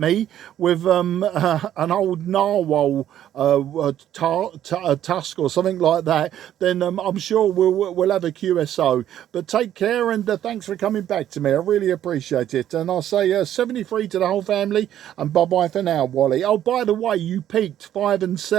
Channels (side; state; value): left; quieter; 11.3 dB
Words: with an old narwhal tusk or something like that, then I'm sure we'll have a QSO. But take care, and thanks for coming back to me. I really appreciate it. And I'll say 73 to the whole family, and bye-bye for now, Wally. Oh, by the way, you peaked 5 and